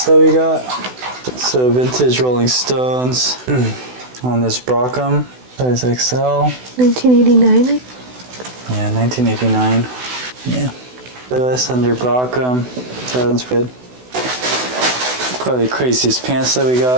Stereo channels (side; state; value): left; late; 16 ms